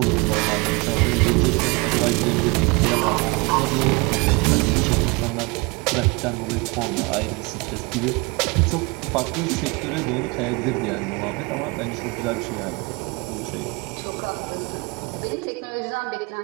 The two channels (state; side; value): quieter; left; 27.4 dB